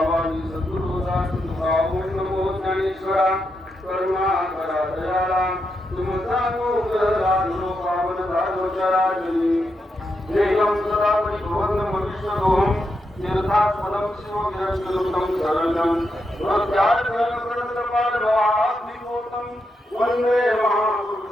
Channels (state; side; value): normal; both; correlation 0.84